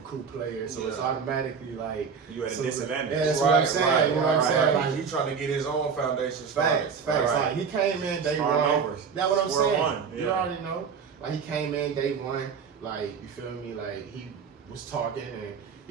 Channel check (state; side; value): quieter; left; 6.1 dB